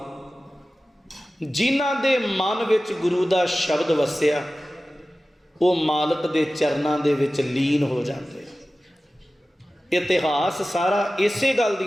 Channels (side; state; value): both; normal; correlation 0.96